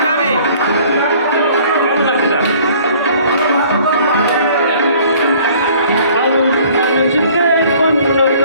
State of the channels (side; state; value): both; inverted; correlation -0.54